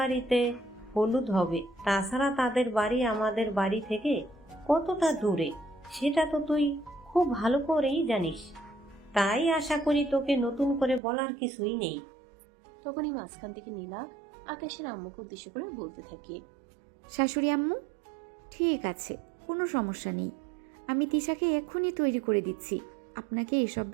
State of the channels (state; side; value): drops out; left; at 11.0 s